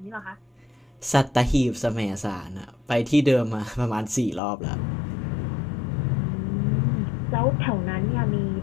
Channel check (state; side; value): drops out; right; at 4.4 s